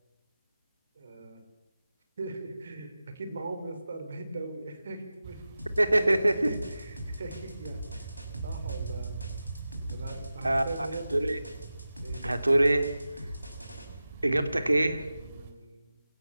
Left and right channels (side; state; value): both; inverted; correlation -0.94